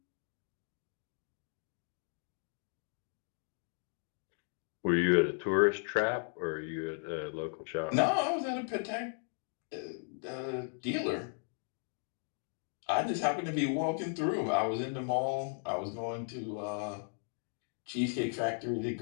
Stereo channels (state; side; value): silent; right; 54 dB below the other